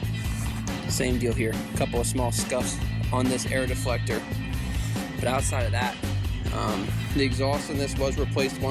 Same deal here. A couple of small scuffs on this air deflector. But outside of that, the exhaust in this was replaced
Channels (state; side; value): identical; both; correlation 1.00